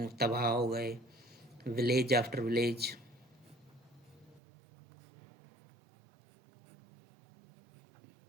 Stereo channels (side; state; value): left; drops out; at 4.4 s